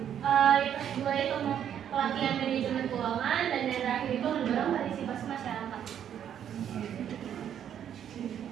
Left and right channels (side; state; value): left; quieter; 9.5 dB